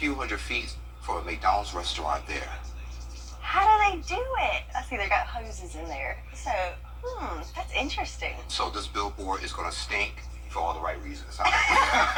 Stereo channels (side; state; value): both; identical; correlation 1.00